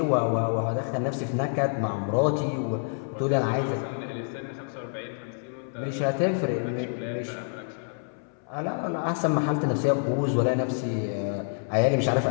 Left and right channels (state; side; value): silent; right; 60 dB below the other